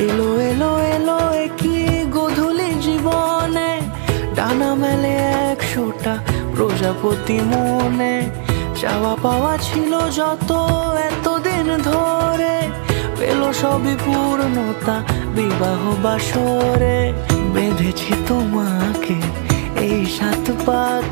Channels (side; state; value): left; silent; digital silence